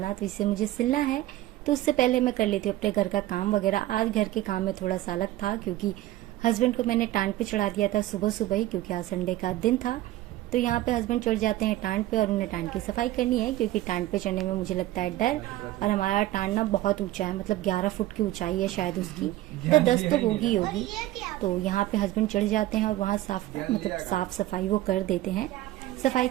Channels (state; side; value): quieter; left; 15.5 dB